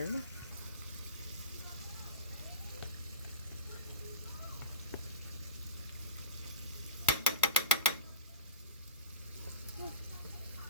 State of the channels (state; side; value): inverted; both; correlation -0.33